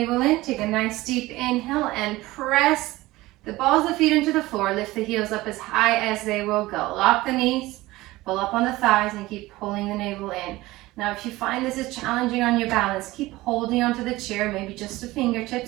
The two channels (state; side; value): quieter; left; 18.8 dB